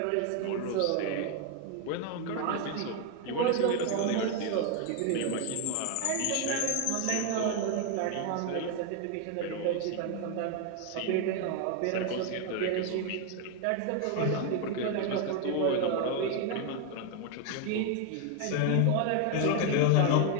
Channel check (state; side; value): different; both; correlation 0.01